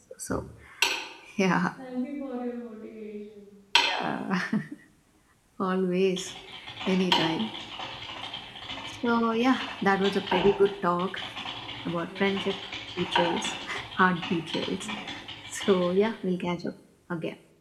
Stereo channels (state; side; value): identical; both; correlation 1.00